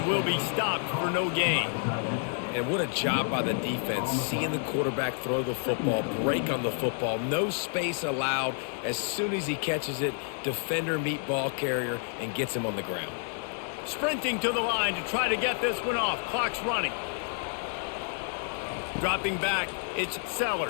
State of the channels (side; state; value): right; silent; 55 dB below the other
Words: will be stopped for no gain. And what a job by the defense, seeing the quarterback throw the football, break on the football, no space allowed. As soon as he catches it, defender meet ball carrier and gets him on the ground. Sprinting to the line to try to get this one off. Clock's running. Dropping back, it's